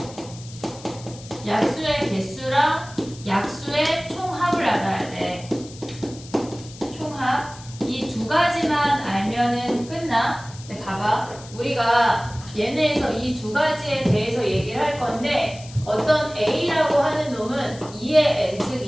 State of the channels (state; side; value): noise; left; hiss, 18 dB below the sound